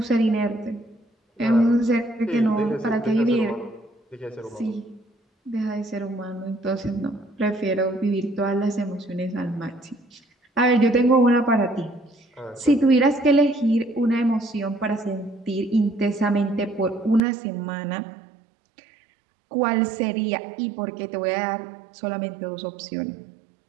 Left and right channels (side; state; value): left; drops out; at 17.2 s